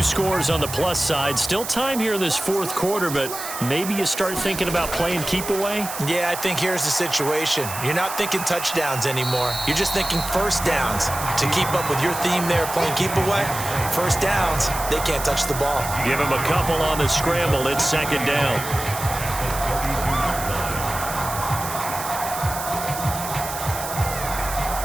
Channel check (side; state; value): right; noise; hiss, 8 dB below the sound